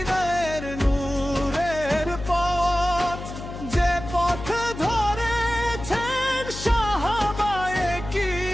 নূরের পথ। যে পথ ধরেছেন সাহাবায়ে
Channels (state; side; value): noise; left; hum, 10 dB below the sound